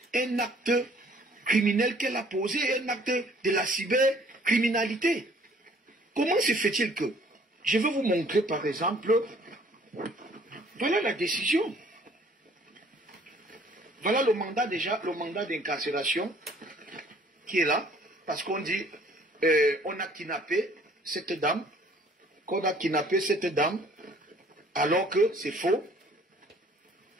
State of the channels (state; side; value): normal; both; correlation 0.57